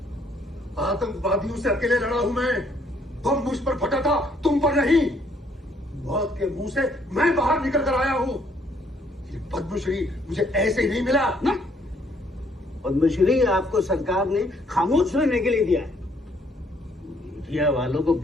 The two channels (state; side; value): normal; both; correlation 0.66